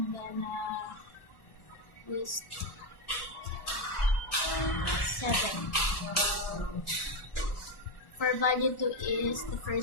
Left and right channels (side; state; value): right; late; 1.4 ms